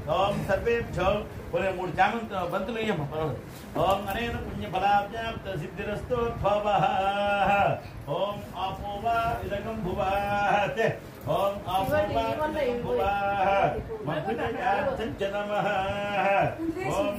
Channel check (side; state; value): both; identical; correlation 1.00